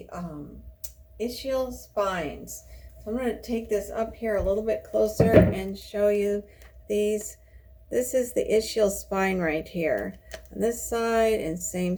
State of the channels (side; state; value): both; identical; correlation 1.00